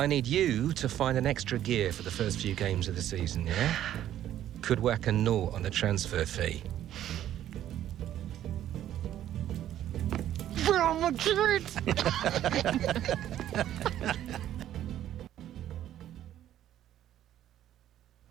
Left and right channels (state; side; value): quieter; left; 11.8 dB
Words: need you to find an extra gear for the first few games of the season, yeah? Could whack a naught on the transfer fee. Real Madrid!